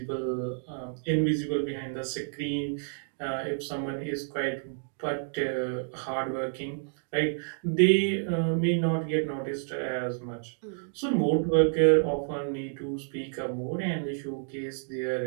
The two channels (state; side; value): silent; left; digital silence